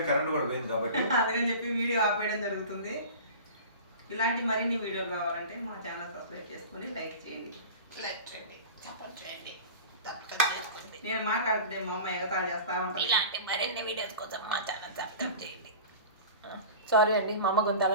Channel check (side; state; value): both; inverted; correlation -0.36